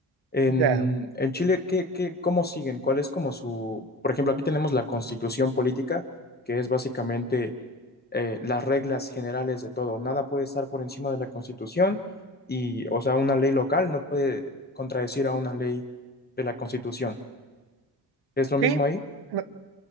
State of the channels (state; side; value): normal; both; correlation 0.37